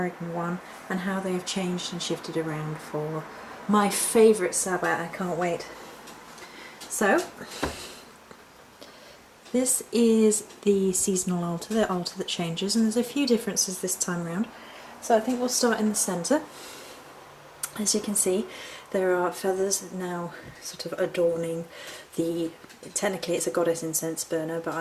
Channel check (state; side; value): identical; both; correlation 1.00